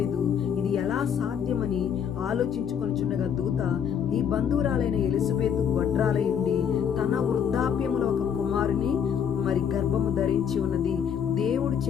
ఇది ఎలా సాధ్యమని ఆలోచించుకొనిచుండగా దూత, నీ బంధువురాలైన ఎలిజబెత్ గొడ్రాలై ఉండి తన వృద్ధాప్యములో ఒక కుమారుని గర్భము ధరించి ఉన్నది. దేవుడు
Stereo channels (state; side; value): quieter; right; 8.0 dB